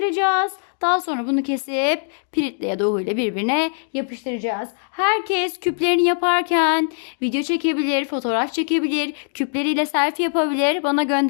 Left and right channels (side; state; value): right; silent; digital silence